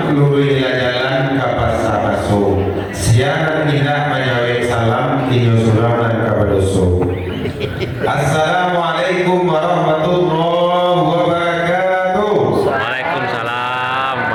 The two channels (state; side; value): identical; both; correlation 1.00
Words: lurui jalan kapas sabaso. Siang tidak menjawab salam inyo suraman kabadoso. Assalamualaikum warahmatullahi wabarakatuh. Waalaikumsalam